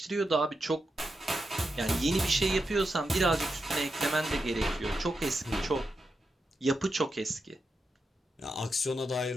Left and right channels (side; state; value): both; normal; correlation 0.87